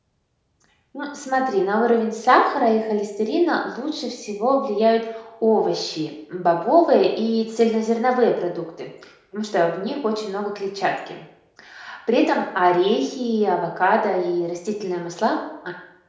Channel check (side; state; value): both; identical; correlation 1.00